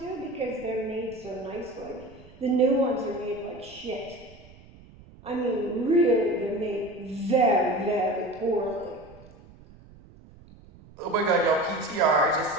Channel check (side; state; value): right; noise; rumble, 22 dB below the sound